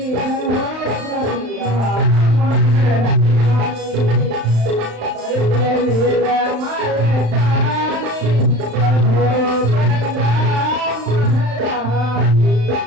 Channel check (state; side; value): late; left; 35 ms